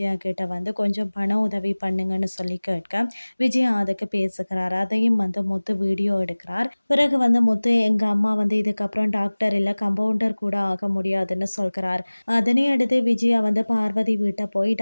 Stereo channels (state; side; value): inverted; both; correlation -1.00